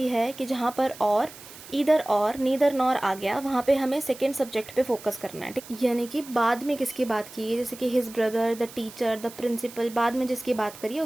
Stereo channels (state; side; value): noise; right; hiss, 17 dB below the sound